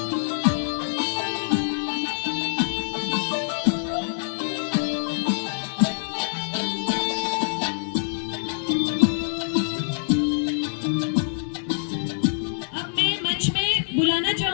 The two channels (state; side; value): silent; right; digital silence